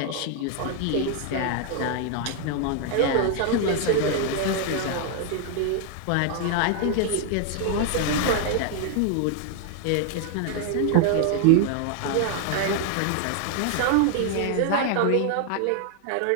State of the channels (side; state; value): both; different; correlation 0.00